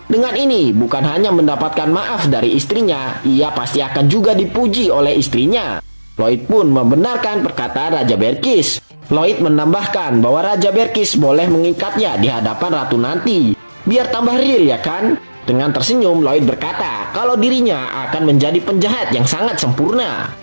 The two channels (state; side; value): inverted; both; correlation -1.00